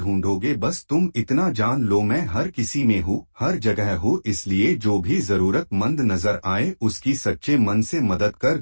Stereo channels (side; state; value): both; inverted; correlation -1.00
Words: बस तुम इतना जान लो, मैं हर किसी में हूँ, हर जगह हूँ, इसलिए जो भी जरूरतमंद नजर आए उसकी सच्चे मन से मदद कर